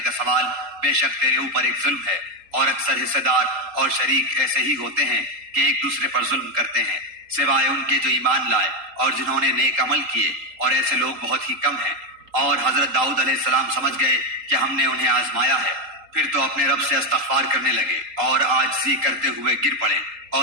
سوال بے شک تیرے اوپر ایک ظلم ہے، اور اکثر حصے دار اور شریک ایسے ہی ہوتے ہیں کہ ایک دوسرے پر ظلم کرتے ہیں سوائے ان کے جو ایمان لائے اور جنہوں نے نیک عمل کیے، اور ایسے لوگ بہت ہی کم ہیں. اور حضرت داؤد علیہ السلام سمجھ گئے کہ ہم نے انہیں آزمایا ہے، پھر تو اپنے رب سے استغفار کرنے لگے اور عاجزی کرتے ہوئے گر پڑے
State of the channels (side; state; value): left; late; 3.8 ms